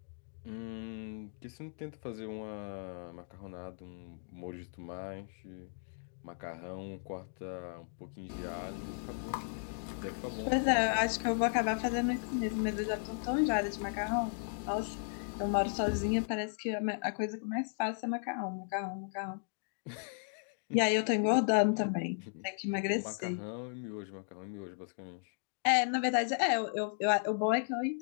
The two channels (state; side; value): silent; right; digital silence